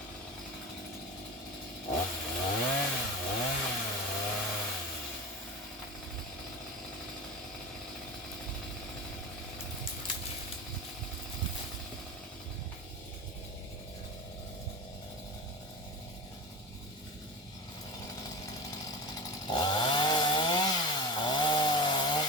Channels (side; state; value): both; normal; correlation 0.29